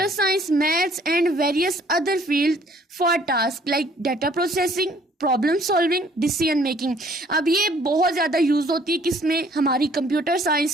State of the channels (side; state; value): both; normal; correlation 0.59